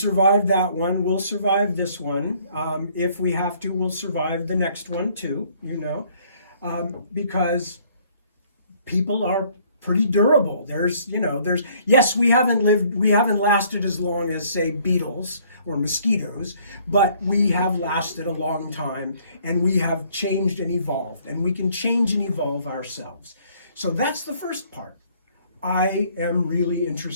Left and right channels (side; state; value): both; inverted; correlation -0.61